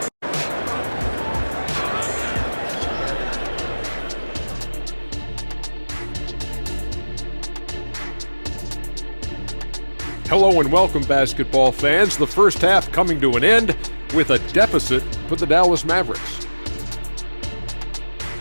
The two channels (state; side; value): inverted; both; correlation -1.00